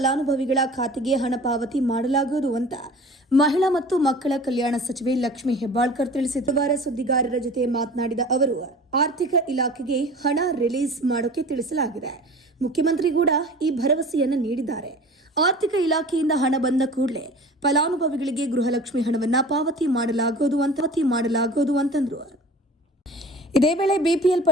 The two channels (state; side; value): normal; both; correlation 0.41